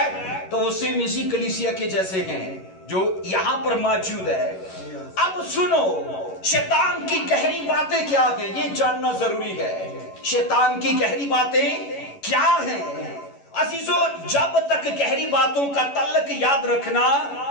تو وہ سیم اسی کلیسیا کے جیسے ہیں جو یہاں پر موجود ہے. اب سنو شیطان کی گہری باتیں کیا ہیں یہ جاننا ضروری ہے. شیطان کی گہری باتیں کیا ہیں عزیزو؟ جب تک گہری باتوں کا تعلق یاد رکھنا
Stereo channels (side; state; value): right; late; 11 ms